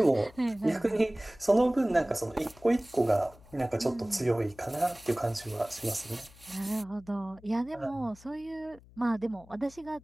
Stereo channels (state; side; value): noise; left; hum, 24 dB below the sound